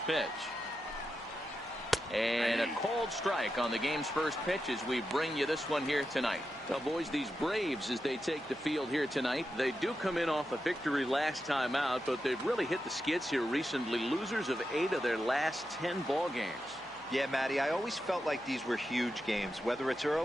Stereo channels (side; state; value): right; noise; hum, 28 dB below the sound